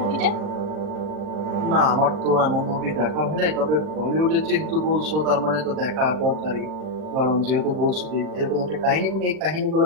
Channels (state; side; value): late; left; 39 ms